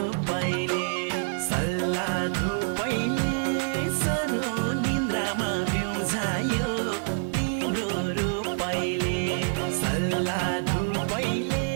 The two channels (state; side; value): silent; left; 60 dB below the other